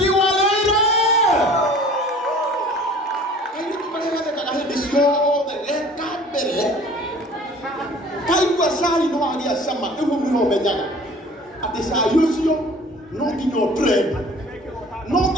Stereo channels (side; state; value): both; normal; correlation 0.48